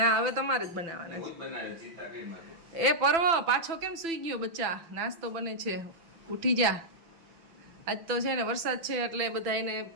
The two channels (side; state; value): left; late; 6.0 ms